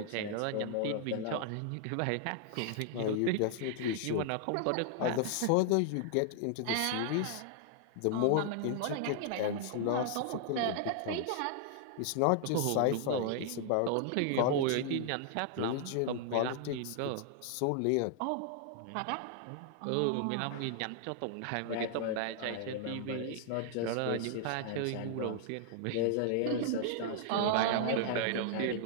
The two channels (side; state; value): both; different; correlation 0.00